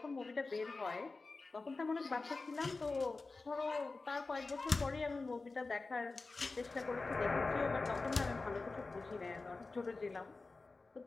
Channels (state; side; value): quieter; right; 3.7 dB